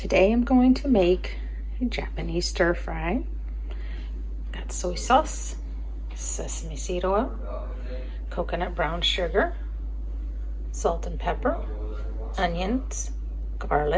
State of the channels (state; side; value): identical; both; correlation 1.00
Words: I'm going to make a Japanese stir fry. Got soy sauce, sesame seed oil, coconut brown sugar, salt and pepper, onions,